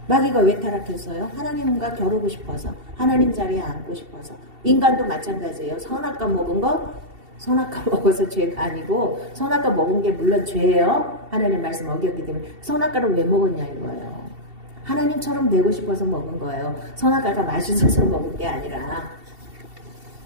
마귀가 왜 타락했어요? 하나님과 겨루고 싶어서 하나님 자리에 앉고 싶어서 인간도 마찬가지예요. 선악과 먹은 거 선악과 먹어서 죄가 아니고 선악과 먹은 게 물론 죄예요. 하나님 말씀 어겼기 때문에 선악과를 왜 먹었냐 이거예요. 하나님처럼 되고 싶어서 먹은 거예요. 선악과가 맛있어서 먹은 게 아니라.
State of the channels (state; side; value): late; left; 2.7 ms